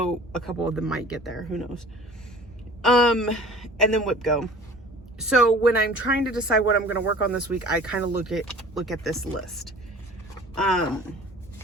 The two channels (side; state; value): both; normal; correlation 0.45